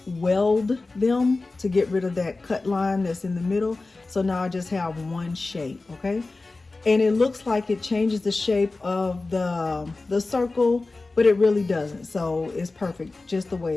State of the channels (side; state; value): right; quieter; 3.4 dB